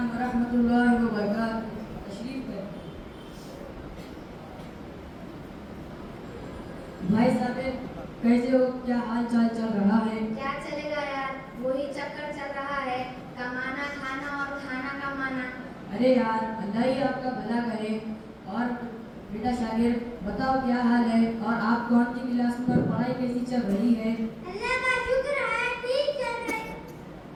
ورحمۃ اللہ وبرکاتہ. تشریف لیں. بھائی صاحب کیسے ہو؟ کیا حال چال چل رہا ہے؟ کیا چلے گا یار, وہی چکر چل رہا ہے, کمانا کھانا اور کھانا کمانا. ارے یار اللہ ہی آپ کا بھلا کرے. اور بیٹا شاگرد بتاؤ کیا حال ہے, اور آپ کون سی کلاس میں اور پڑھائی کیسی چل رہی ہے؟ اللہ کا شکر ہے, ٹھیک چل رہی ہے.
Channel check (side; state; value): both; identical; correlation 1.00